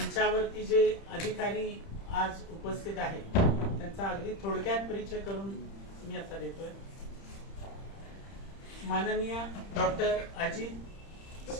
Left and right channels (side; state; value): right; late; 30 ms